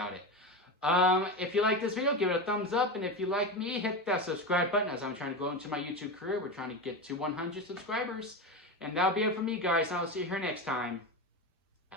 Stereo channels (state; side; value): normal; both; correlation 0.20